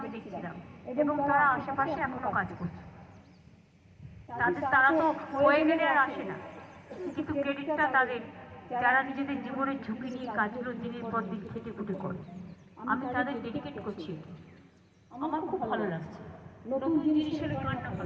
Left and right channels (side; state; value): both; identical; correlation 1.00